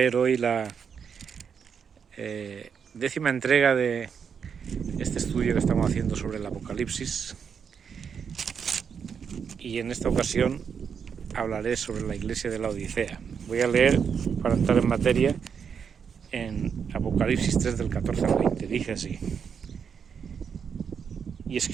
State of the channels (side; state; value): left; quieter; 6.9 dB